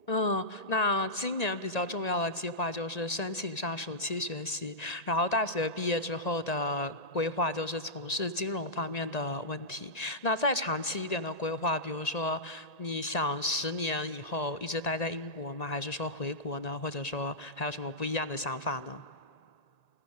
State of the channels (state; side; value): late; right; 1.9 ms